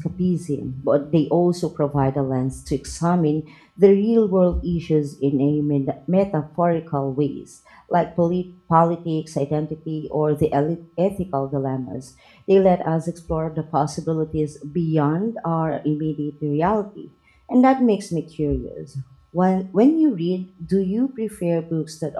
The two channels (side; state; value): both; identical; correlation 1.00